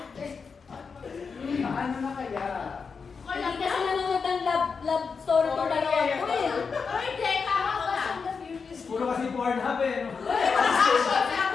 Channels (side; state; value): right; quieter; 5.4 dB